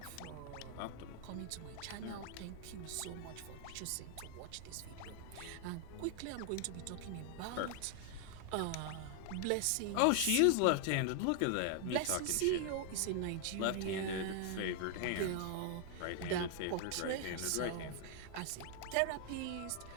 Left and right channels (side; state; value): both; different; correlation 0.00